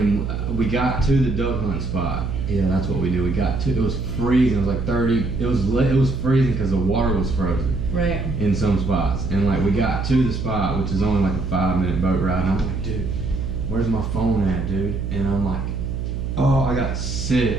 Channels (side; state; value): right; noise; hum, 3 dB below the sound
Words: we got to the duck hunt spot. Yeah, that's what we did. We got to. It was freezing. It was like 30. It was freezing because the water was frozen. Right. In some spots, and like we got to the spot, which is only like a 5-minute boat ride. And I'm like, dude, where's my phone at, dude? And I'm like, oh, I got